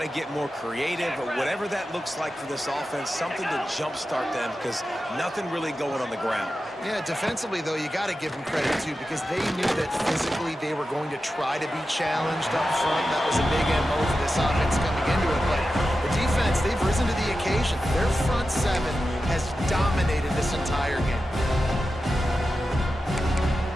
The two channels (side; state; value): both; normal; correlation 0.92